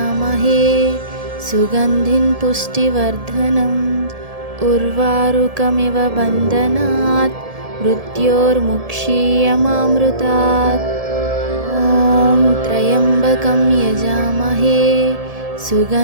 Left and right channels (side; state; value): left; late; 1.7 ms